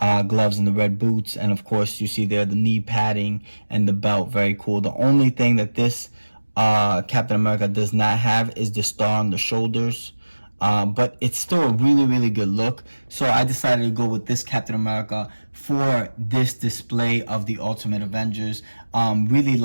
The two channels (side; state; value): both; inverted; correlation -1.00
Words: gloves and the red boots, and of course you see there the knee padding and the belt. Very cool. The only thing that this Captain America does not have is the star on the shoulders, but it's still a really good look. So I decided to go with this Captain America for this display of the Ultimate Avengers. Really